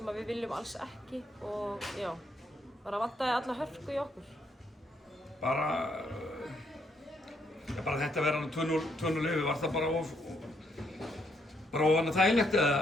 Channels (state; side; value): normal; both; correlation 0.74